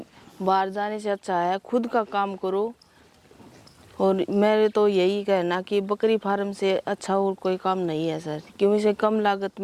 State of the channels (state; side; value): identical; both; correlation 1.00